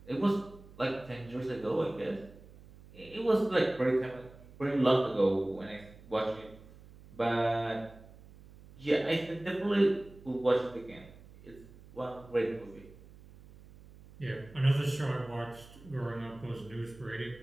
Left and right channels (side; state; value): right; noise; hum, 21 dB below the sound